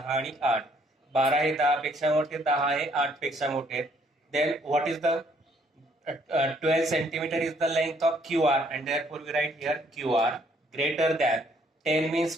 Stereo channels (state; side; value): normal; both; correlation 0.65